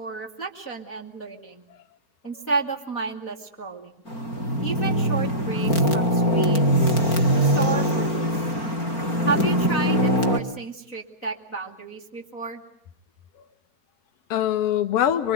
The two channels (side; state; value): right; late; 4.4 ms